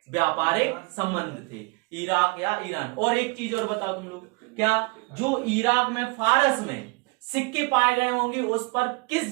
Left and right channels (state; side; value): quieter; left; 28.3 dB